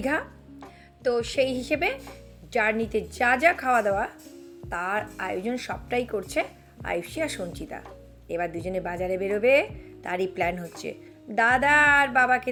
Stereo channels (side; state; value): both; identical; correlation 1.00